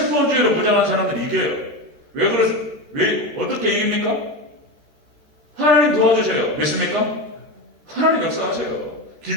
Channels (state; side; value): late; left; 13 ms